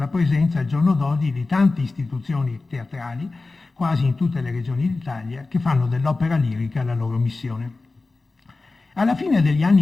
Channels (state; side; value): quieter; right; 3.5 dB